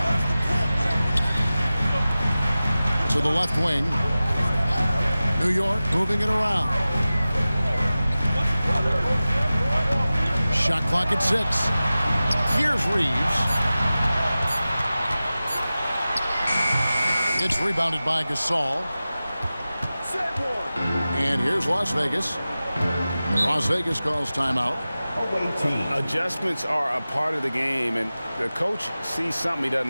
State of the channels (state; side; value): inverted; both; correlation -0.96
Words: To the left wing. New York moving it around. Shot clock at 6. Here's Reeves. It's rebounded by Gasol. And here's Las Vegas. Las Vegas calls timeout. Away team. Adjustments are a part of the game, and the coach sees something he